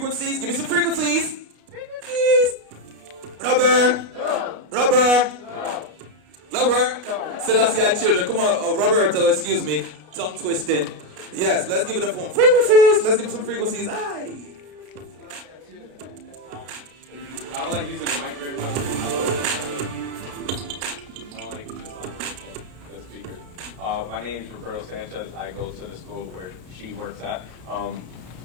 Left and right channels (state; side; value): late; left; 33 ms